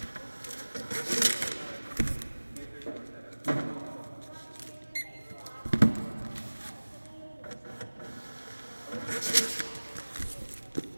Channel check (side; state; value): both; inverted; correlation -1.00